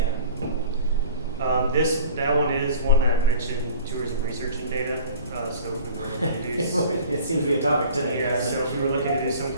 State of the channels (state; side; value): inverted; both; correlation -0.43